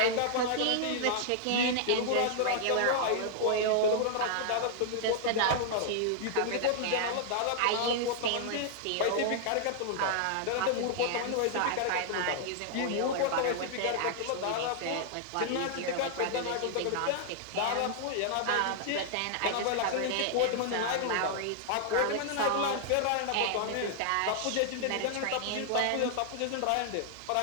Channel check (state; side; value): different; both; correlation -0.01